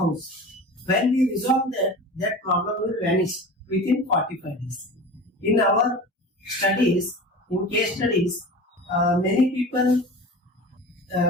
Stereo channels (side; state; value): both; normal; correlation 0.34